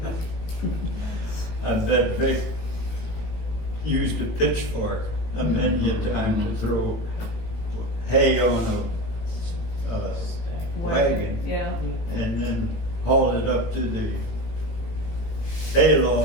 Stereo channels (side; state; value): right; late; 17 ms